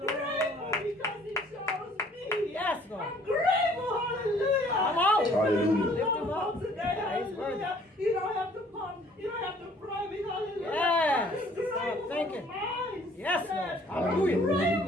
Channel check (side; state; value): both; normal; correlation 0.57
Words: grateful because He chose me. Yes, Lord. I'm grateful. Hallelujah. Come on. Hallelujah. Lift Him up today. He's worthy. Hallelujah. You don't have to pump. You don't have to pray me. Hallelujah. Yes. I'm grateful Thank for you. the mindset. Yes, Lord. I'm Hallelujah.